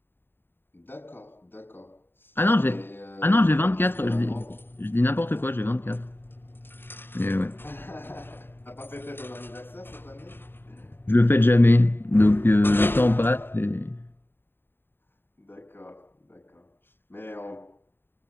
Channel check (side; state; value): right; late; 0.10 ms